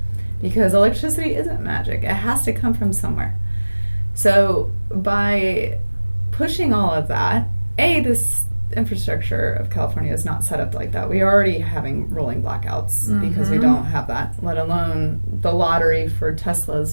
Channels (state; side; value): inverted; both; correlation -1.00